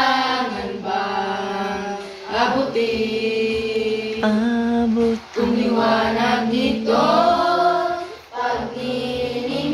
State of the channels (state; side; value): identical; both; correlation 1.00